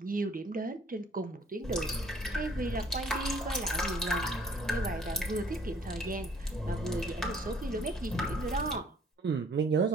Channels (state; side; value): normal; both; correlation 0.57